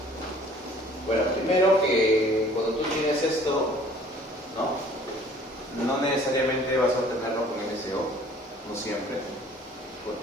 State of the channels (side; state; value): both; normal; correlation 0.53